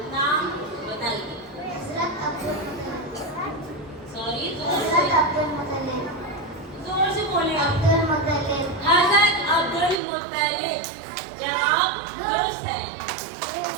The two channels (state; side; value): drops out; left; at 10.0 s